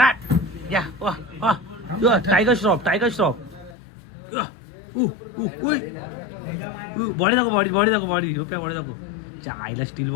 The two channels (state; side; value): drops out; right; at 3.8 s